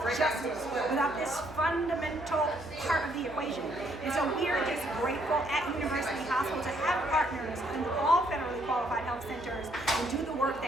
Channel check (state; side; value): noise; left; hum, 18 dB below the sound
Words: justice without this fundamental part of the equation. And so we are just grateful at University Hospital to have partners in all federally qualified health centers and do the work